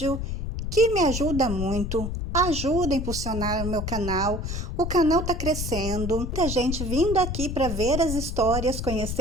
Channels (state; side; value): noise; left; rumble, 4 dB below the sound